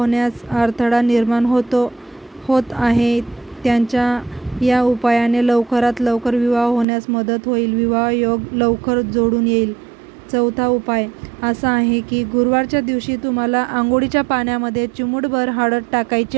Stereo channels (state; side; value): drops out; left; at 6.9 s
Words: अडथळा निर्माण होत आहे. त्यांच्या या उपायाने लवकरात लवकर विवाह होण्यास मदत होईल. विवाह योग लवकर जोडून येईल. चौथा उपाय असा आहे की गुरुवारच्या दिवशी तुम्हाला अंघोळीच्या पाण्यामध्ये चिमूटभर हळद टाकायची